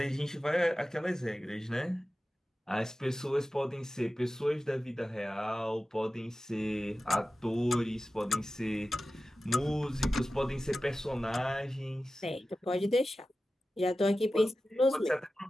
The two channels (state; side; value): normal; both; correlation 0.94